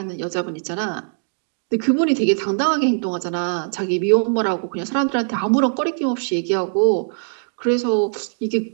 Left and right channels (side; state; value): left; silent; digital silence